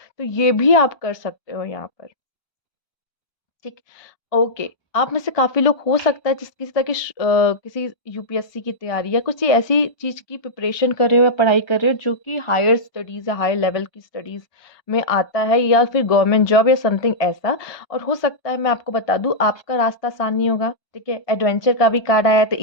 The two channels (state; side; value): late; right; 1.2 ms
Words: तो ये भी आप कर सकते हो यहाँ पर। ठीक, ओके। आप में से काफ़ी लोग हो सकता है जिस किसी तरह की किसी यूपीएससी की तैयारी या कुछ ऐसी चीज़ की प्रिपरेशन कर रहे हो या पढ़ाई कर रहे हो जो कि हायर स्टडीज़ या हायर लेवल की स्टडीज़ में आता है या फिर गवर्नमेंट जॉब या समथिंग ऐसा। और हो सकता है मैं आपको बता दूँ आपका रास्ता आसान नहीं होगा, ठीक है? एडवेंचर का भी कार्ड आया है तो